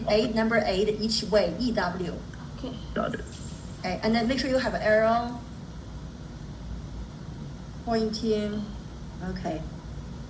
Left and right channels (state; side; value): identical; both; correlation 1.00